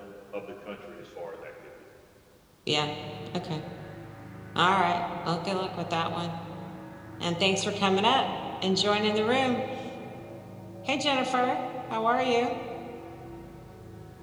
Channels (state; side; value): identical; both; correlation 1.00